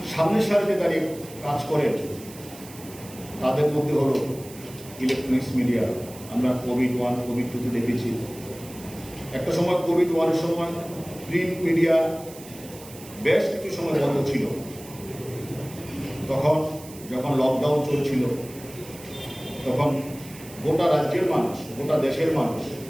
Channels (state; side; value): noise; right; hiss, 18 dB below the sound